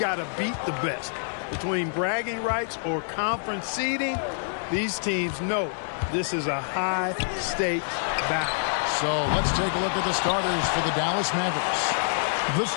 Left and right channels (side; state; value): right; silent; digital silence